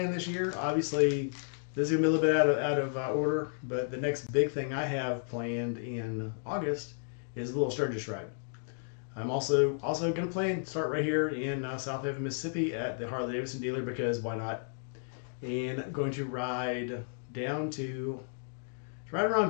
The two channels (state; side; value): silent; right; digital silence